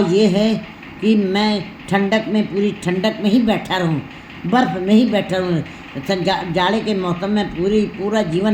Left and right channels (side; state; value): both; identical; correlation 1.00